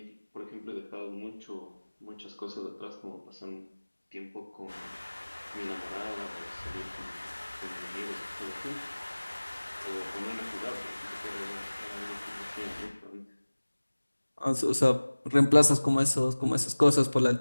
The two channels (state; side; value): inverted; both; correlation -1.00